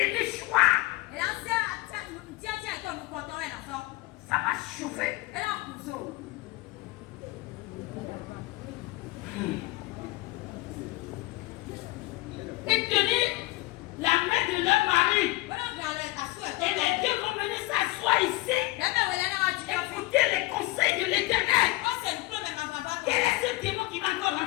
choix. Ça va chauffer. Ils tenir la main de leur mari. Et les deux vont venir s'asseoir ici. Écouter les conseils de l'Éternel. Quel est ce démon qui va encore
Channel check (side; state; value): right; quieter; 20.4 dB